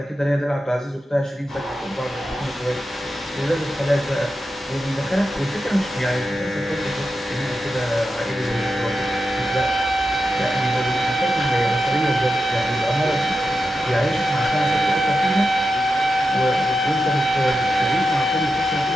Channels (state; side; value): normal; both; correlation 0.89